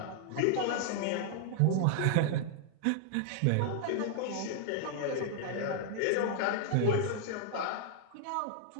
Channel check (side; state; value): both; different; correlation 0.00